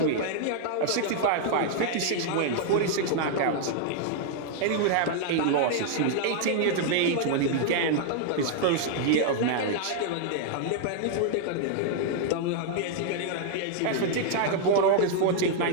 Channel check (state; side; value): different; both; correlation 0.00